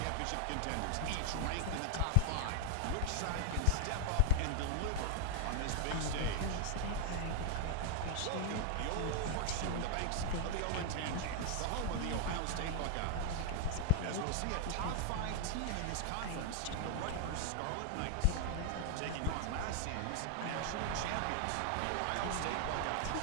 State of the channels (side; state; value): both; different; correlation 0.00